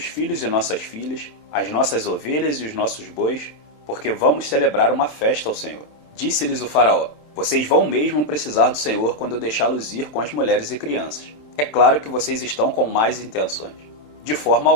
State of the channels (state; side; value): late; right; 27 ms